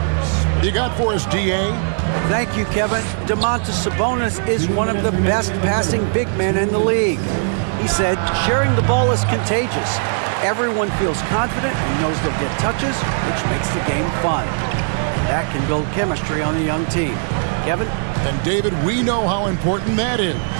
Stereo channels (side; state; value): left; silent; digital silence